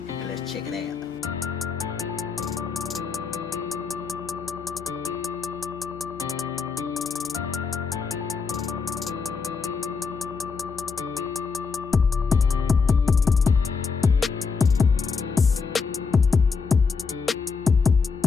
and let's check it out.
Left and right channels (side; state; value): right; quieter; 5.1 dB